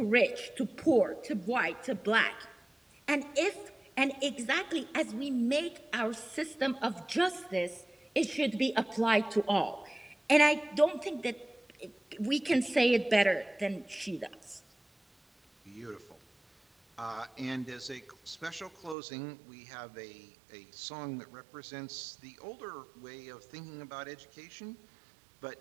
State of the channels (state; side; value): drops out; left; at 18.9 s